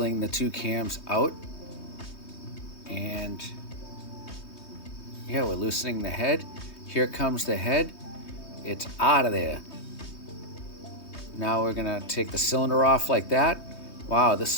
the 2 cams out, and yeah, we're loosening the head. Here comes the head. It's out of there. Now we're gonna take the cylinder off like that. Wow,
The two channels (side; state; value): right; late; 3.2 ms